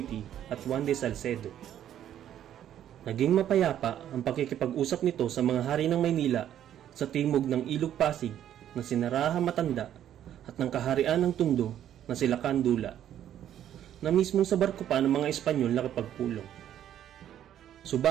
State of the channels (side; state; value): left; quieter; 10.8 dB